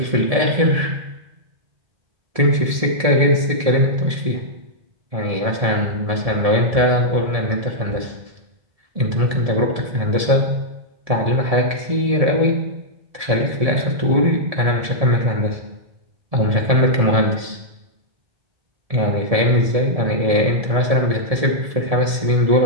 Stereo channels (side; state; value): left; late; 1.7 ms